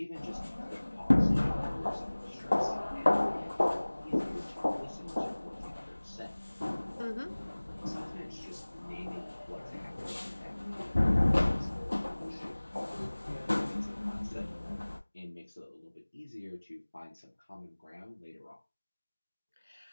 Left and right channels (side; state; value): both; inverted; correlation -1.00